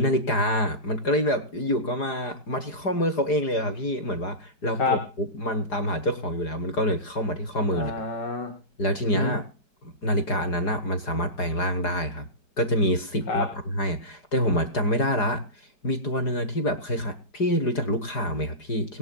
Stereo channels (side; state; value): right; late; 4.9 ms